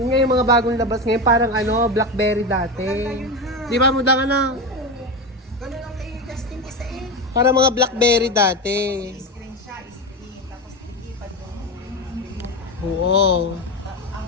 nga yung mga bagong labas ngayon, parang ano, Blackberry dati. Maganda yun, ha? Di ba, muda ka na? Ganun ang kay Justin isa eh. Parang mga Blackberry dati. Screen siya, screen. Tapos ilipad yung Oo. ang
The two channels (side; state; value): both; normal; correlation 0.18